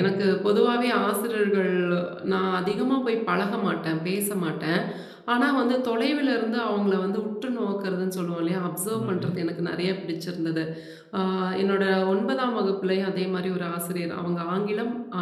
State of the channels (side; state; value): both; identical; correlation 1.00